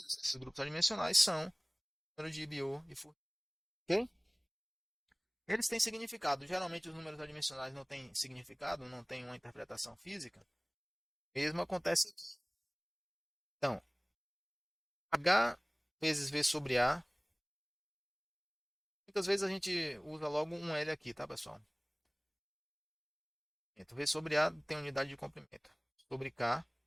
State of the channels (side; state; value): both; identical; correlation 1.00